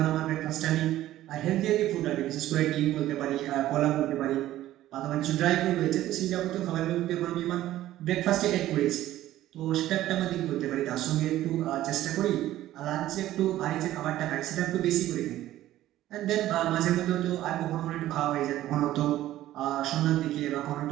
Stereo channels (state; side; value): quieter; left; 14.2 dB